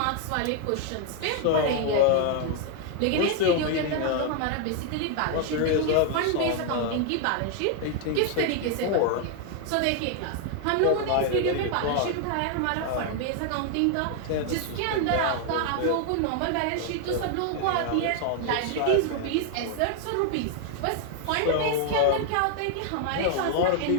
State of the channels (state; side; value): different; both; correlation 0.00